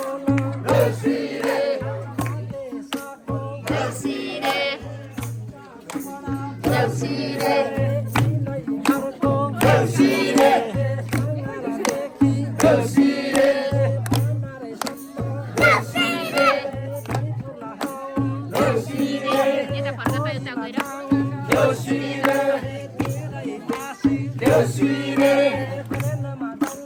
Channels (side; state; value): both; identical; correlation 1.00